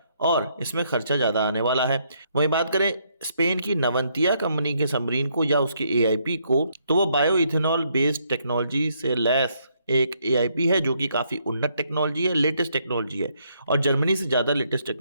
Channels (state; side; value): inverted; both; correlation -0.72